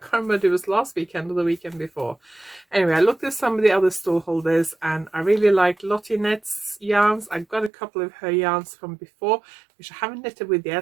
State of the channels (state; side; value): drops out; left; at 7.7 s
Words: remember if it was last weekend or the weekend before. Anyway, I looked at some of the other stall holders and I really liked Lottie Knit's yarns. I've got a couple of her yarns from before, which I haven't knitted with